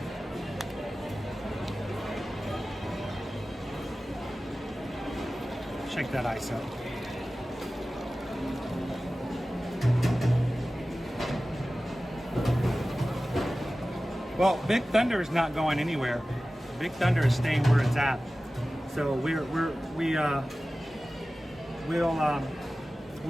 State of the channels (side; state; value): both; normal; correlation 0.96